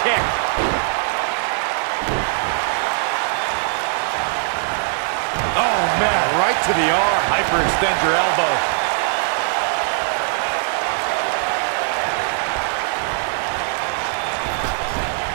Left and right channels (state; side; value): silent; left; 57 dB below the other